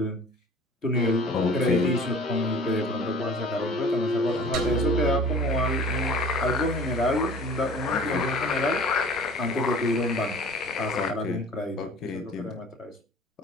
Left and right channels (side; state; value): both; normal; correlation 0.45